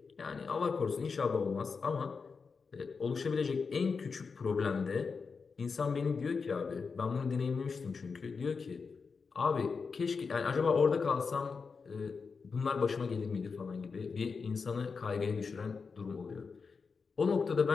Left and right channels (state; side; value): quieter; right; 5.1 dB